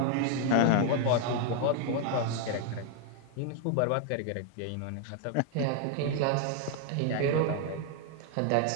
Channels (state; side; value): different; both; correlation 0.00